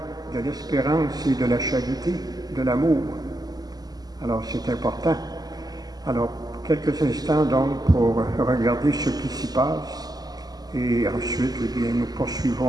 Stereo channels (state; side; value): late; left; 0.19 ms